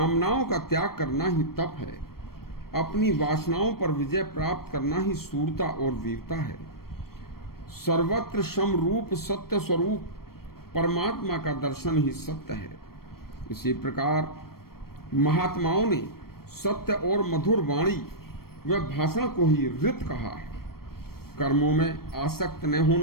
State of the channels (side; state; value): right; late; 0.94 ms